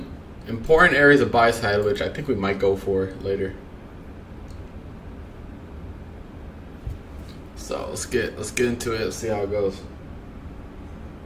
important areas of buy side, which I think we might go for later. So let's get into it. Let's see how it goes.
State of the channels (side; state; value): both; identical; correlation 1.00